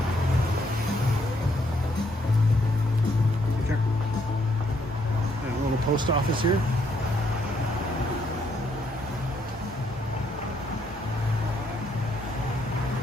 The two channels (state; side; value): normal; both; correlation 0.72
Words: Post office here.